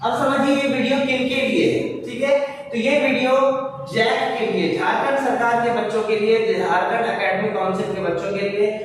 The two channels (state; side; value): identical; both; correlation 1.00